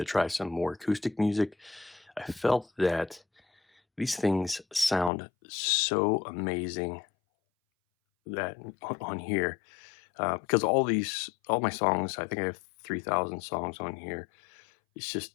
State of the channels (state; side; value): drops out; right; at 5.1 s